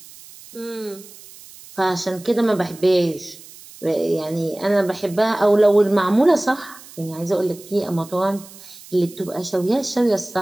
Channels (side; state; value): right; noise; hiss, 20 dB below the sound